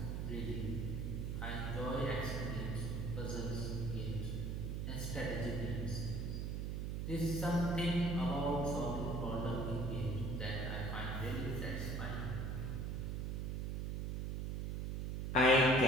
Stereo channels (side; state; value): right; noise; hum, 2 dB below the sound